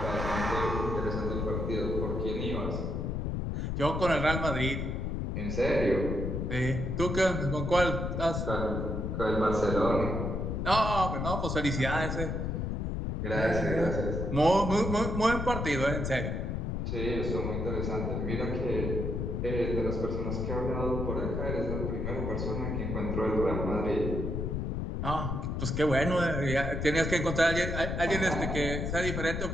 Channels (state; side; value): noise; left; rumble, 2 dB below the sound